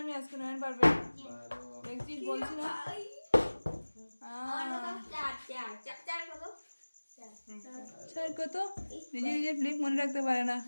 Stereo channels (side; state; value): both; inverted; correlation -1.00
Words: আমি আজকে নয়ন পারবে দেখছিস বলছি না স্যার কত নিজে নিজে ফ্লিপ মনে রাখতে পারে না